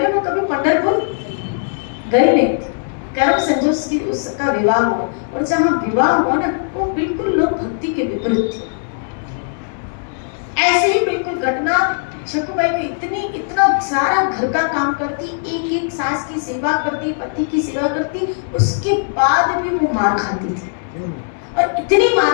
वो कभी पंढरपुर गई नहीं थी। कर्म संजोग की उसका विवाह हुआ और जहाँ विवाह हुआ ना वो बिल्कुल लोक भक्ति के विपरीत थी। ऐसे ही बिल्कुल घटना शकुबाई को इतना सारा घर का काम करती, एक एक सास की सेवा करती, पति की सेवा करती, उसके बाद भी वो मार खाती थी और इतनी मार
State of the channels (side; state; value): right; silent; digital silence